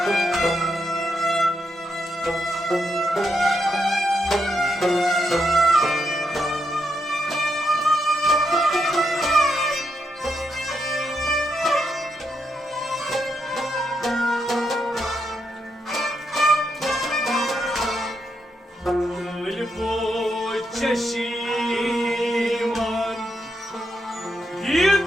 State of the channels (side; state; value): both; normal; correlation 0.81